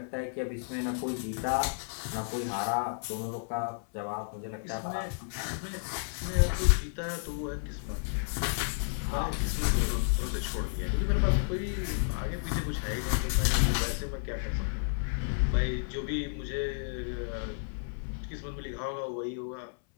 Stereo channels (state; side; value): silent; right; 57 dB below the other